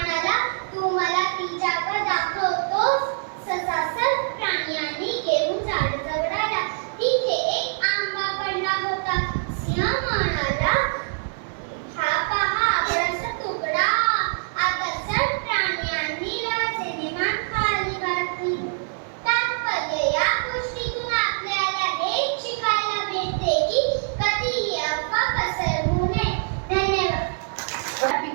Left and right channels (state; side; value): silent; left; 62 dB below the other